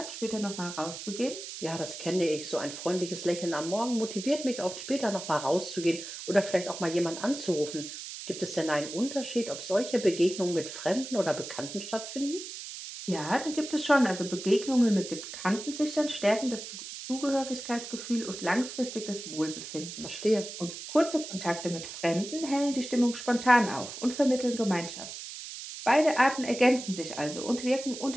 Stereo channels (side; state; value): right; noise; hiss, 10 dB below the sound